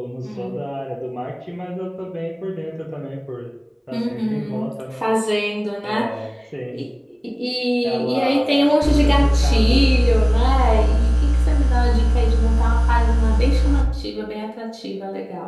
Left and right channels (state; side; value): identical; both; correlation 1.00